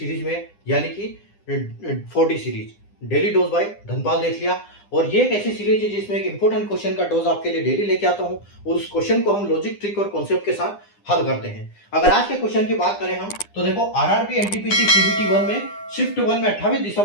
में, यानी कि 4D series daily dose by Dhanpal Dethia. और ये एक ऐसी सीरीज है जिसमें एक इंपॉर्टेंट क्वेश्चन का डोज आपके लिए डेली लेके आता हूं और उस क्वेश्चन को हम लॉजिक, ट्रिक और कॉन्सेप्ट के साथ हल करते हैं। अगर आज के क्वेश्चन की बात करें हम, तो देखो आरआरबी एनटीपीसी सीबीटी 1 में शिफ्ट 1 में 28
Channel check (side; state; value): right; late; 9.9 ms